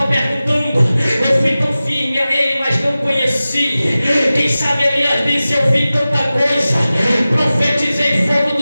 perguntando, eu fui tão firme a ele, mas não conheci. Quem sabe Elias disse, eu vi tanta coisa, profetizei, fogo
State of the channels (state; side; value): inverted; both; correlation -0.96